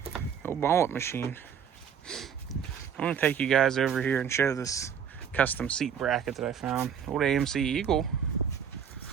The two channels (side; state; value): left; quieter; 7.8 dB